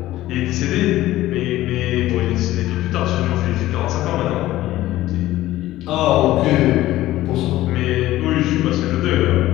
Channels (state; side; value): quieter; right; 15.5 dB